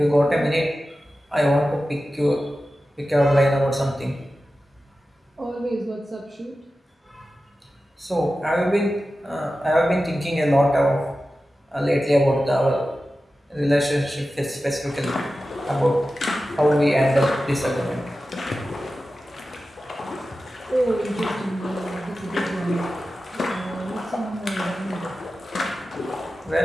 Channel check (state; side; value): normal; both; correlation 0.94